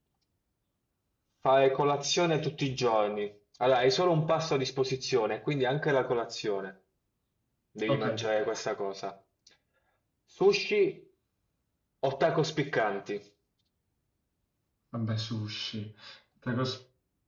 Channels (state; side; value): identical; both; correlation 1.00